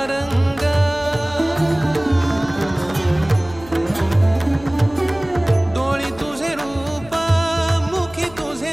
रंग डोळी तुझे रूप मुखी तुझे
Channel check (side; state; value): left; noise; hum, 20 dB below the sound